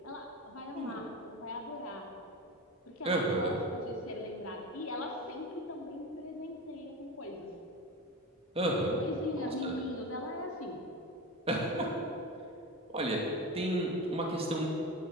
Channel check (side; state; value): both; normal; correlation 0.26